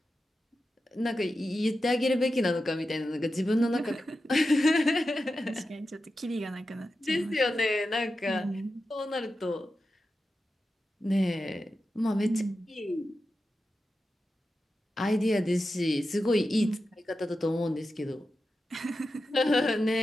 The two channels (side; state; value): both; normal; correlation 0.91